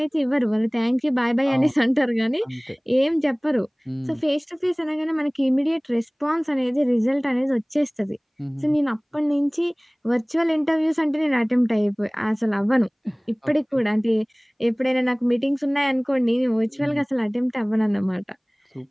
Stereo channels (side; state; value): both; identical; correlation 1.00